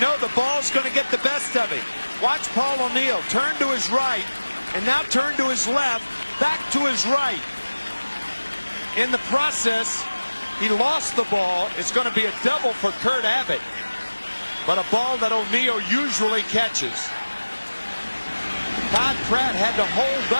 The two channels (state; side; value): inverted; both; correlation -1.00